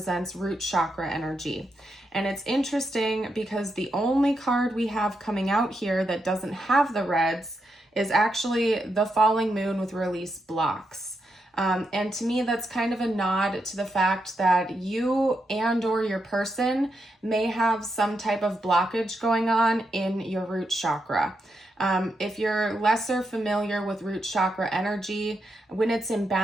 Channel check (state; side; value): normal; both; correlation 0.83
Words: root chakra energy. And it's interesting because the only card we have coming out here that doesn't have the reds is actually the falling moon with release blocks. And to me, that's kind of a nod to the fact that you and or your person may have some type of blockage going on in your root chakra. If you're lesser familiar with root chakra energy, when it's